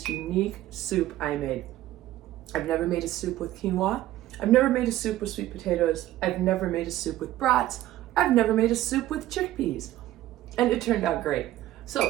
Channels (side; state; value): left; quieter; 14.6 dB